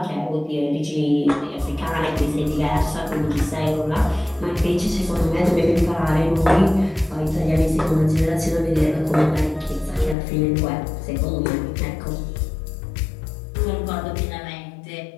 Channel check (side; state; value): right; drops out; at 10.2 s